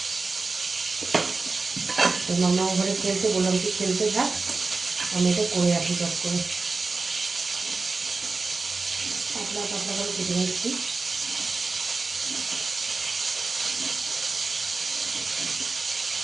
তো মামা ঘরে খেলতে, বললাম কি খেলতে থাক, আমি এটা করে রাখি চট করে। পাতলা পাতলা করে কেটে নিচ্ছি।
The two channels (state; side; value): quieter; left; 4.0 dB